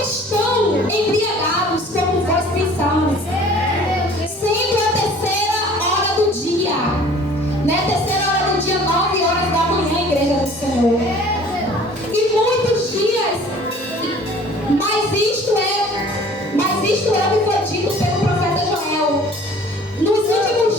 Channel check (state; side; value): normal; both; correlation 0.50